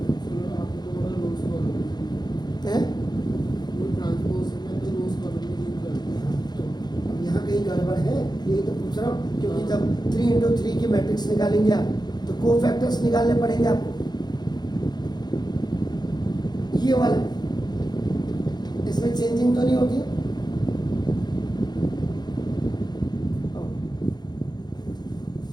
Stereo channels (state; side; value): late; right; 0.20 ms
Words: है, तो यहाँ कहीं गड़बड़ है यही तो पूछ रहा हूँ, क्योंकि जब 3 × 3 की मैट्रिक्स निकालेंगे आप तो कोफैक्टर्स निकालने पड़ेंगे आपको, ये वाला इसमें चेंजिंग तो नहीं होती,